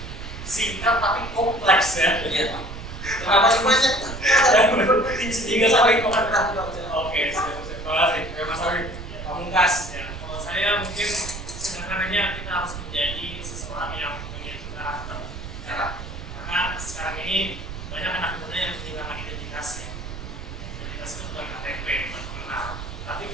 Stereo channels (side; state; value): right; noise; rumble, 9 dB below the sound